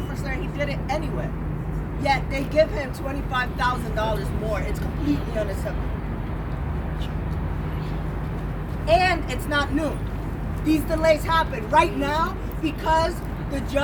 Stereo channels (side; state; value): both; identical; correlation 1.00